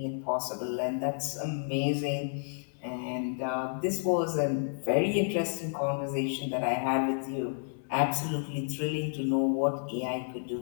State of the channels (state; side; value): silent; right; digital silence